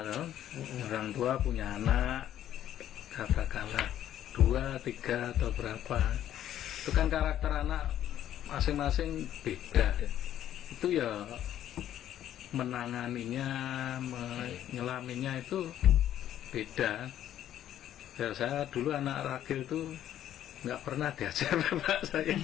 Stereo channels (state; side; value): quieter; right; 11.5 dB